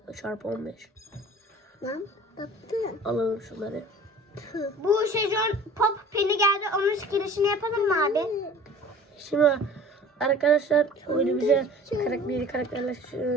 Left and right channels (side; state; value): both; normal; correlation 0.45